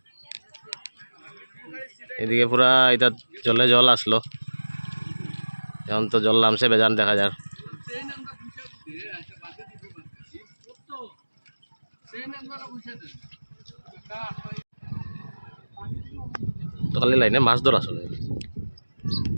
এদিকে পুরা এটা জলে জল আসলো, এখন তো জল নামছে বেজান দেখা যায়। তো খালি লাইনে মাছ ধরা চলে,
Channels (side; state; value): both; inverted; correlation -1.00